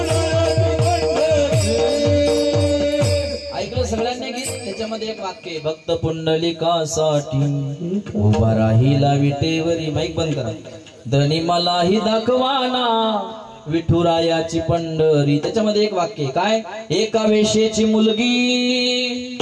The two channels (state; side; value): identical; both; correlation 1.00